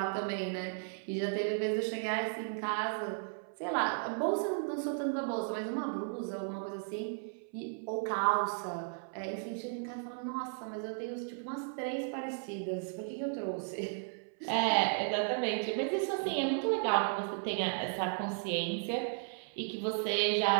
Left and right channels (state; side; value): silent; left; 54 dB below the other